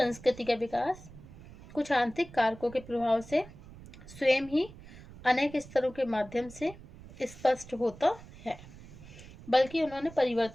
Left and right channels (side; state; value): right; noise; rumble, 18 dB below the sound